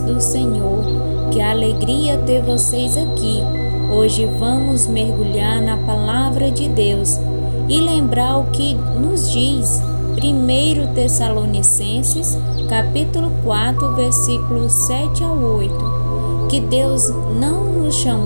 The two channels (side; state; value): both; inverted; correlation -1.00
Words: Senhor. Que alegria ter vocês aqui. Hoje vamos mergulhar na palavra de Deus e lembrar o que nos diz 1 Tessalonicenses, capítulo 4, versículos 7 ao 8, que Deus não nos